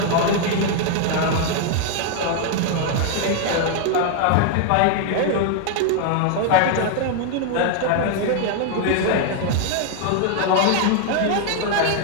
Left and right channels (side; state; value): both; different; correlation 0.00